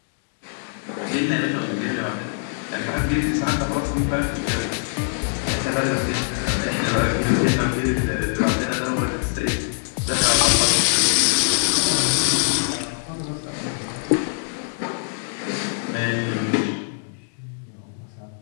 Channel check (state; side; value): silent; right; digital silence